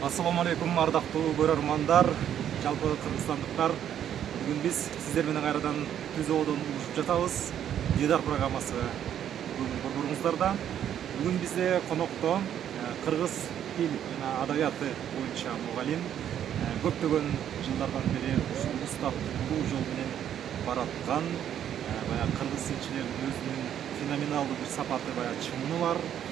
Ассаламу алейкум, ардактуу көрөрмандар, жалпы кыргызстандыктар. Бүгүн биз сиздер менен кайрадан түзөөдөн улушуп жатабыз. Дидар программасы бүгүн борборуңуздарда. Бүгүн бизде конокто кыргыз тил жана адабияты боюнча мугалим, көптөгөн жылдардан бери ушул устаттуу жол менен бараткан, баягы кыргыз тилчилеринин өзүнүн феноменалдуу бир сапаты, баягы чыңы бар,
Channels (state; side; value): quieter; left; 10.0 dB